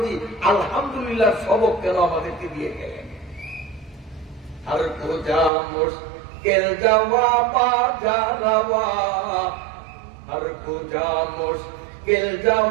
আলহামদুলিল্লাহ সবক কেন আমাদেরকে দিয়ে গেলেন? আর কোজা মুশকিল জওয়াবা জারাওয়া, আর কোজা মুশকিল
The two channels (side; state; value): left; drops out; at 5.5 s